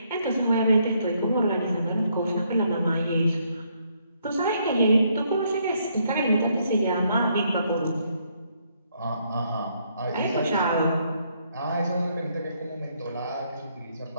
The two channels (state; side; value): inverted; both; correlation -0.72